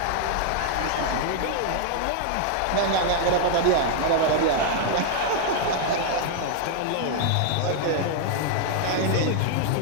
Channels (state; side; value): different; both; correlation 0.00